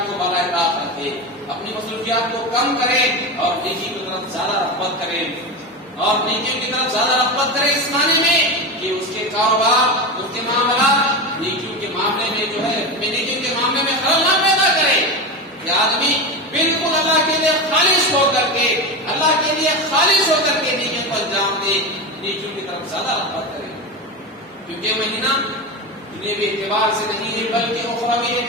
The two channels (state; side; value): normal; both; correlation 0.20